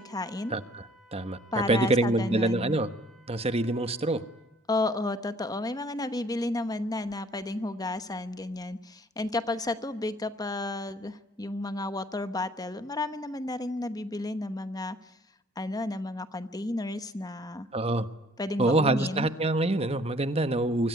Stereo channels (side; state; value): both; normal; correlation 0.58